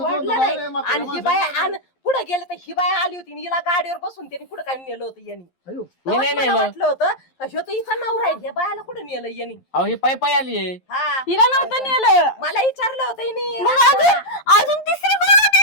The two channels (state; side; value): late; right; 11 ms